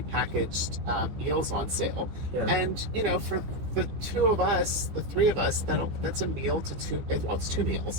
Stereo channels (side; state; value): left; late; 14 ms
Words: meals on sale. Yeah. And for the 3 of us, that's a meal to 2. Well, it's 2